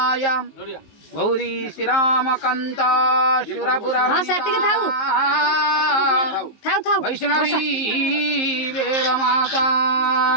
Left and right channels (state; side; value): late; right; 19 ms